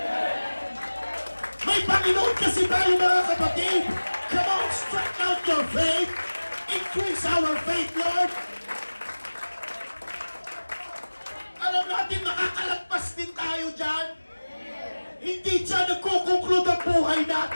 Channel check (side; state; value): both; inverted; correlation -1.00